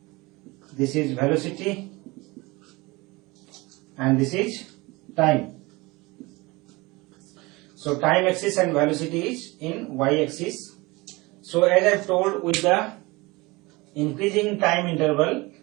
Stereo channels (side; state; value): left; quieter; 23.3 dB